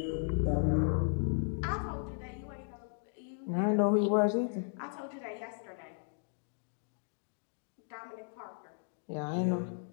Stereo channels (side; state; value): right; silent; digital silence